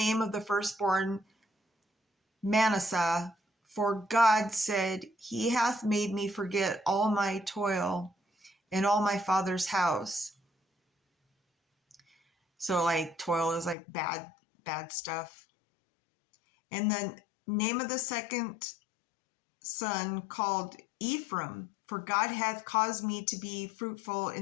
of the firstborn Manasseh, for God said, he hath made me forget all my toil and all my father's house. So like toil is like bad stuff. And the name of the second son called Ephraim, for God hath caused me to be fruitful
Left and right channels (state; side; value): drops out; right; at 13.8 s